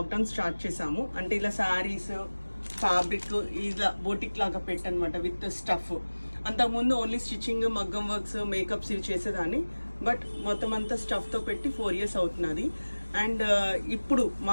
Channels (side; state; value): both; inverted; correlation -1.00